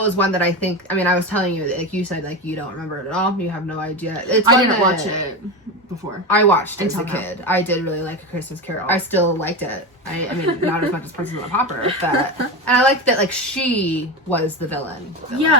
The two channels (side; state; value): both; normal; correlation 0.20